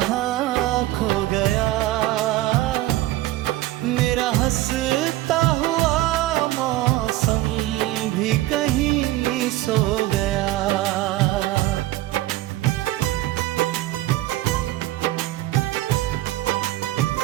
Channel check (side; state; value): left; quieter; 16.3 dB